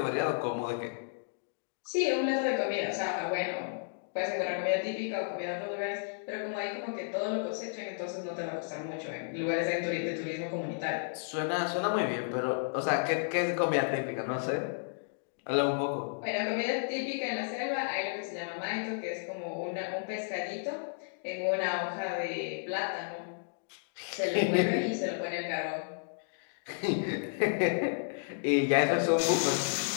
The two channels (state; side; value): silent; right; digital silence